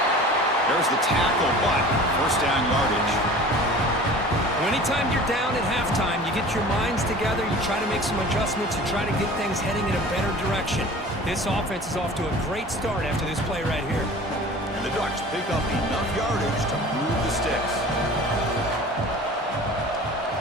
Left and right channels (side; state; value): both; normal; correlation 0.42